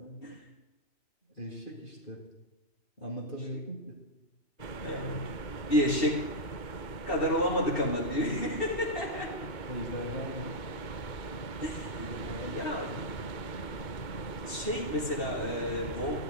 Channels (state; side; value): late; right; 2.7 ms